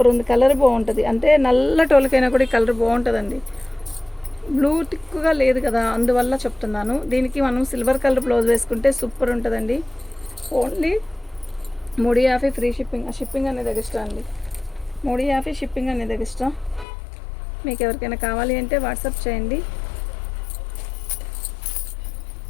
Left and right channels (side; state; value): right; drops out; at 16.9 s